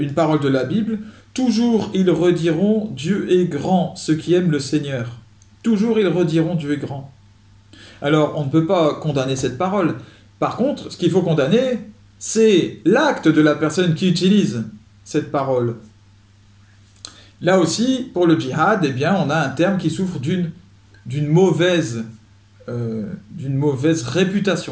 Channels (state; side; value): identical; both; correlation 1.00